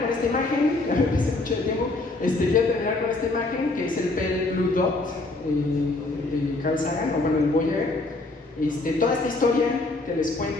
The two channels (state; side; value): quieter; right; 3.1 dB